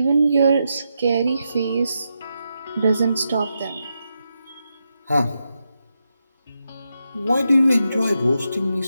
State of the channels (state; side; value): inverted; both; correlation -0.85